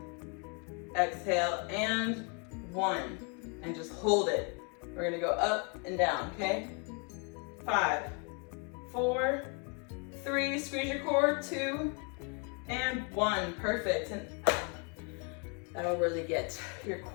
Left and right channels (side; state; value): right; quieter; 36.0 dB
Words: exhale, and 1, and just hold it. We're gonna go up and down, okay? 5, 4, 3, squeeze your core, 2, and 1, perfect. And that'll really get your